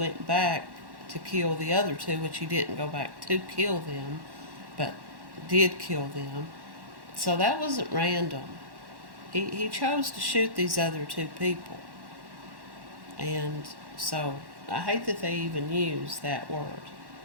back to kill the other 2, which he didn't go back to kill them, but did kill them. So that wasn't random. He chose to shoot these other 2 people. And so I hate that they even use that word.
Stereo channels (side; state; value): left; late; 1.1 ms